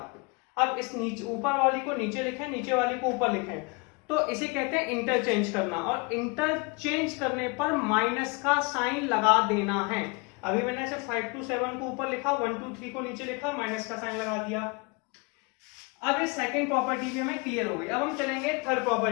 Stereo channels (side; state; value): right; quieter; 29.5 dB